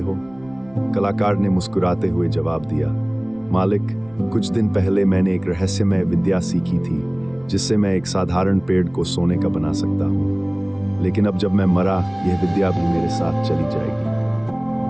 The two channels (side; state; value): right; noise; rumble, 27 dB below the sound